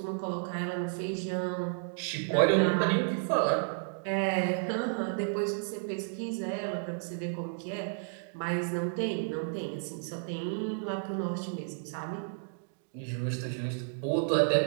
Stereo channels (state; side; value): silent; left; digital silence